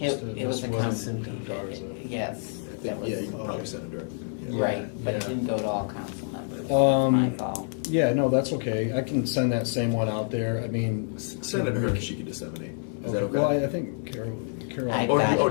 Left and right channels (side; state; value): right; silent; 60 dB below the other